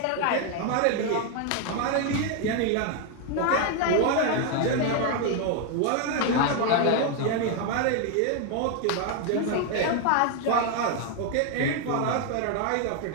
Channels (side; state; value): both; different; correlation 0.01